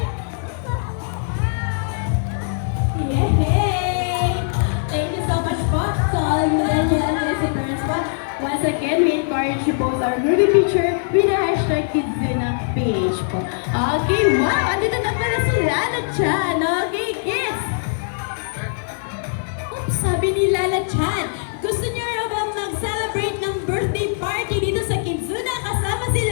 Yay! Thank you so much po sa all you and parents po. Once again, we encourage you both our grouping picture official Kidzuna page po. Okay, wow! Andito na pala si Lala Chan. Okay, kids! Oops, sabi ni Lala Chan, gusto niyo raw ba mag-celebrate ng birthday party dito sa Kidzuna kasama si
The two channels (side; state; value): right; silent; digital silence